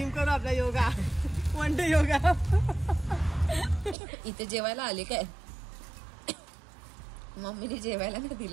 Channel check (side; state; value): left; drops out; at 4.0 s